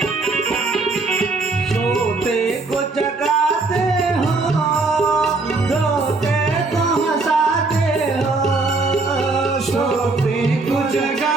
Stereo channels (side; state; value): left; quieter; 3.6 dB